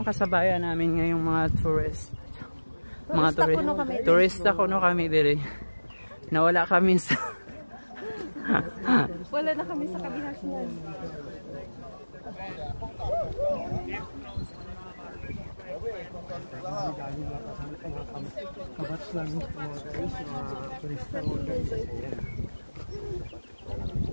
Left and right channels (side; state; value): both; inverted; correlation -1.00